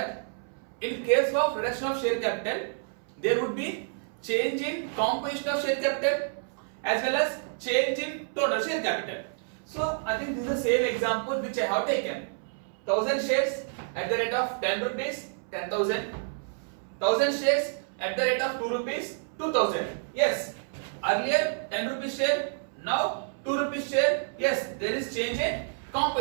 in case of reduction of share capital, there would be change in composition of share capital as well as change in total share capital. So I think this is the same example which I have taken. 1000 shares at the rate of 10 rupees, 10,000. 1000 shares at the rate of 2 rupees, 2,000. Yes, earlier 10 rupees share, now 2 rupees share. Yes, there is change in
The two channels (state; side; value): silent; left; 59 dB below the other